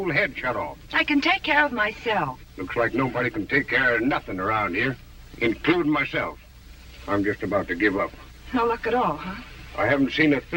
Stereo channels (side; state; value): both; identical; correlation 1.00